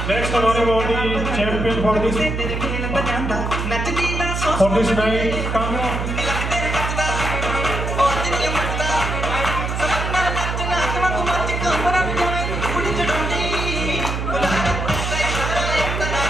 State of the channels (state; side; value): noise; right; hum, 2 dB below the sound